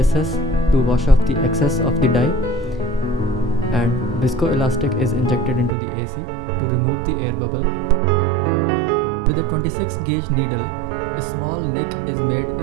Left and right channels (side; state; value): left; drops out; at 5.7 s